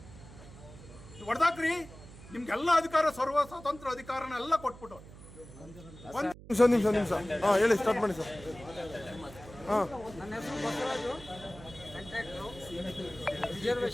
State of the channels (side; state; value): right; noise; hum, 17 dB below the sound